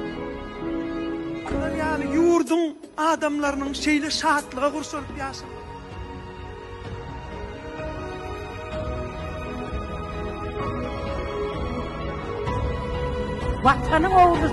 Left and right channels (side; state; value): both; identical; correlation 1.00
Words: Yani yurdun adamlarının şeyle şahatlığa kursulup yaşam. Vatanın